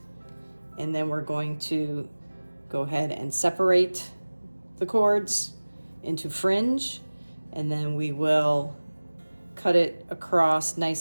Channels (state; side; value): inverted; both; correlation -1.00